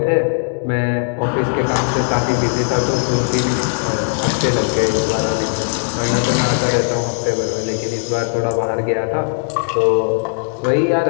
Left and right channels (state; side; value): silent; right; digital silence